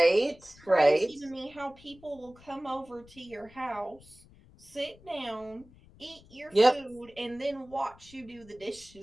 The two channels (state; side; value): noise; left; rumble, 24 dB below the sound